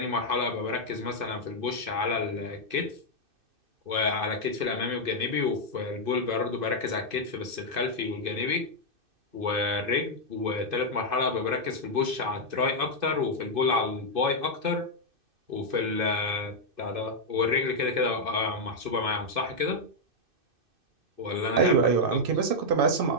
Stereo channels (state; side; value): late; left; 2.6 ms